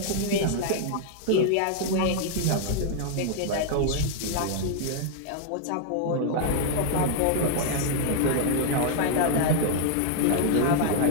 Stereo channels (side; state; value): both; different; correlation -0.01